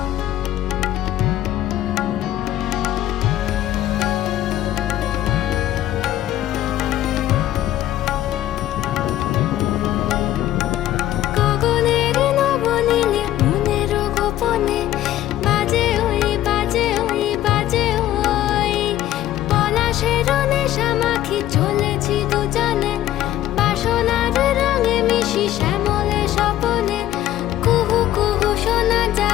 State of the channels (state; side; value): quieter; right; 13.3 dB